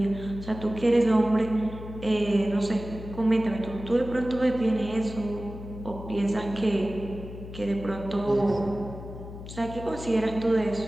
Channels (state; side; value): noise; left; hum, 12 dB below the sound